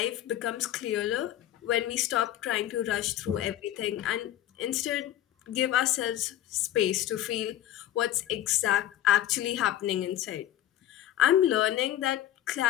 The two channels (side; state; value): right; quieter; 12.5 dB